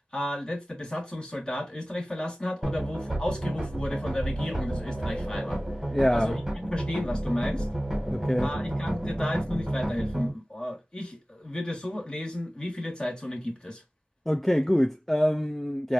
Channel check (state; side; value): normal; both; correlation 0.98